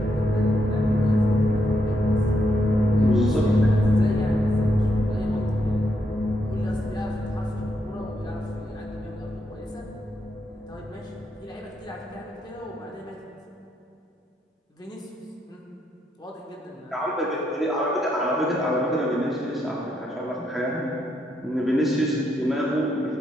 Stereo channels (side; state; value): both; normal; correlation 0.79